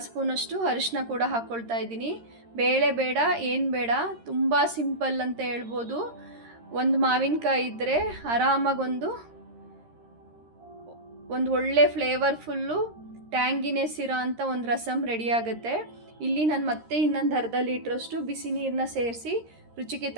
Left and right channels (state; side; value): late; left; 13 ms